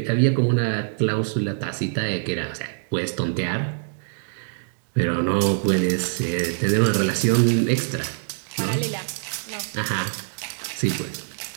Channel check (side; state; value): left; silent; digital silence